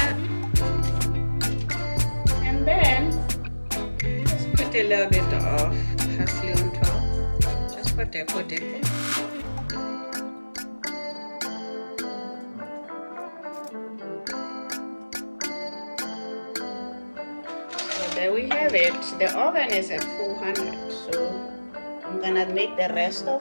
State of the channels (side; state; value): both; inverted; correlation -1.00